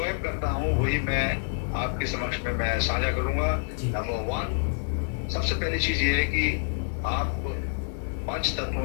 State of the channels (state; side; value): silent; right; 60 dB below the other